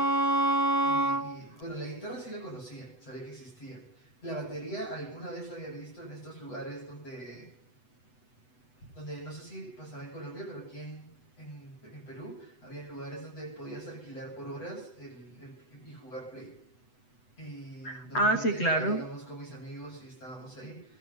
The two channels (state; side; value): late; right; 8.0 ms